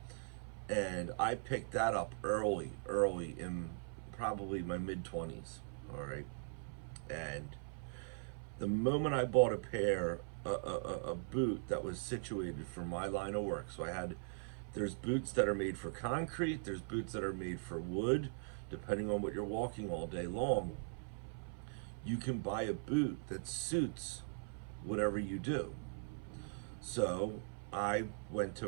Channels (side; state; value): left; silent; 51 dB below the other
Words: And I picked that up early in probably my mid 20s. All right. And the moment I bought a pair, a boot that was situated for my line of work, so there's boots that are made for concrete, there's boots that are made for wood, depending on what you're walking all day long. You can buy a boot that suits whatever you do. So I went